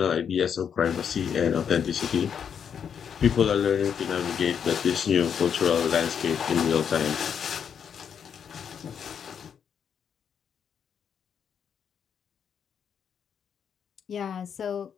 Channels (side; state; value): right; quieter; 7.6 dB